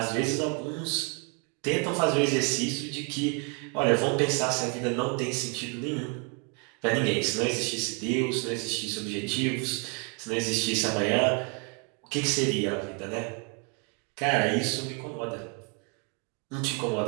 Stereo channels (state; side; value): quieter; left; 36.1 dB